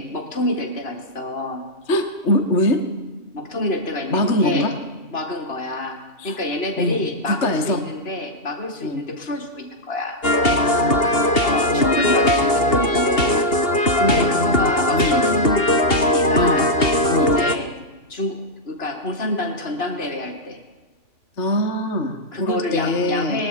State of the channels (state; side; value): late; right; 2.8 ms